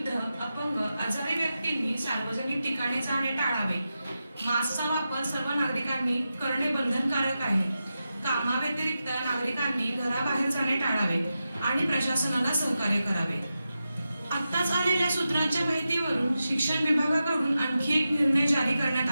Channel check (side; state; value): both; inverted; correlation -0.90